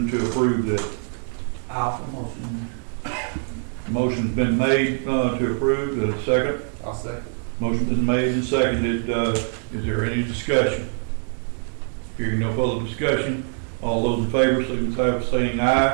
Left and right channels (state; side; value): silent; left; 61 dB below the other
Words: to approve this. Motion. Motion's been made to approve. Is there a second? I'll second. Motion been made and seconded. Is there any discussion? Hearing no further discussion, all those in favor signify by saying